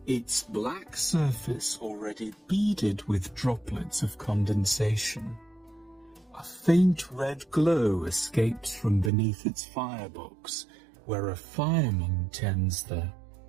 its black surface already beaded with droplets of condensation. A faint red glow escapes from beneath its firebox, where a fireman tends the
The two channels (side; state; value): left; drops out; at 9.1 s